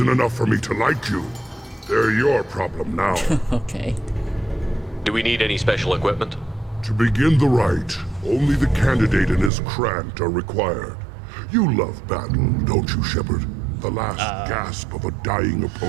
enough for me to like you. They're your problem now. Okay. Do we need any special equipment? To begin the rite, only the candidate and his Krant are required. You love battle, don't you, Shepard? The last gasp of a dying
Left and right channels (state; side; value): drops out; left; at 9.5 s